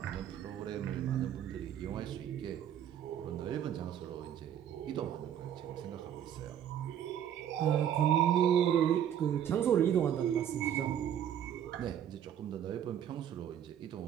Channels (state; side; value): quieter; left; 9.8 dB